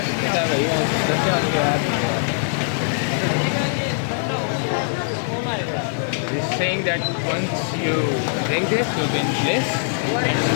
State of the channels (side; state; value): right; silent; digital silence